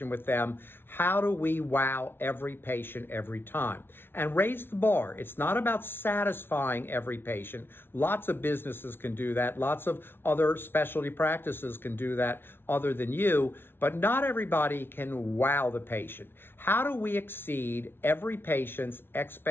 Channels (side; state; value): right; late; 0.11 ms